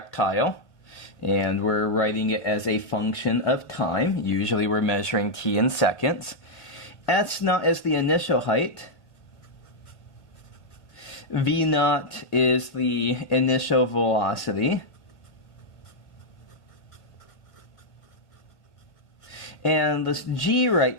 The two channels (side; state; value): right; late; 1.5 ms